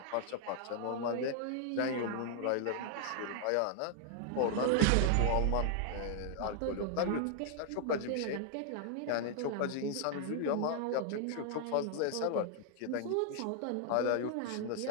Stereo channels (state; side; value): different; both; correlation 0.00